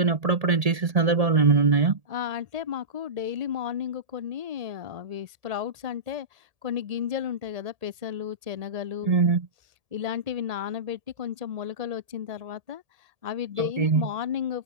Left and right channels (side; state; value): left; late; 1.7 ms